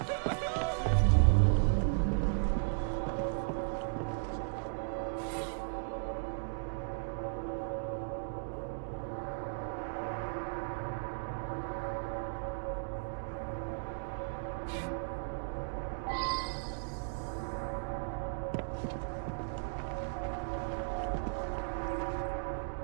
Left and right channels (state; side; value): silent; left; digital silence